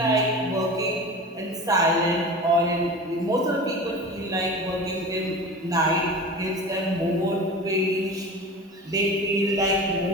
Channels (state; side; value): normal; both; correlation 0.34